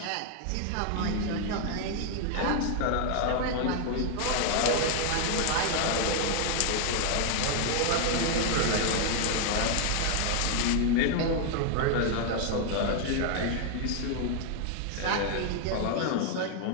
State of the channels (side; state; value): both; different; correlation 0.00